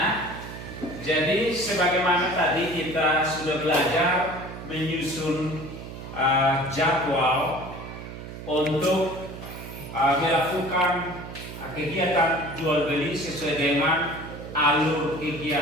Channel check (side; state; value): right; noise; hum, 11 dB below the sound